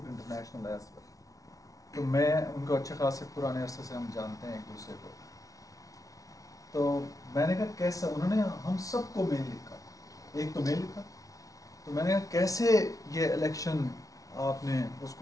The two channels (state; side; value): late; right; 0.17 ms